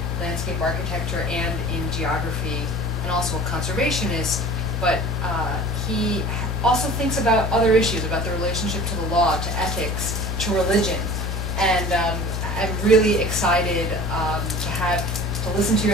landscape architecture and in geography, and also a conservationist. But he also thinks about other issues, about the relationship to the law, to ethics, to religion. And I'm really excited to listen to your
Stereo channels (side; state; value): left; noise; hum, 2 dB below the sound